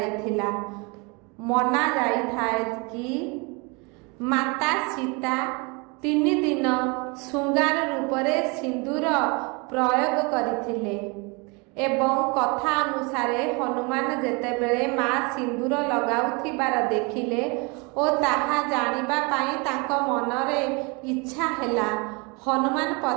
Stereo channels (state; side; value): quieter; left; 29.7 dB